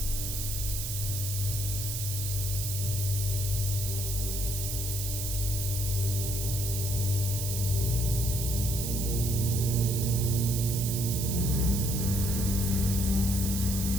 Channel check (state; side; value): noise; right; hiss, 3 dB below the sound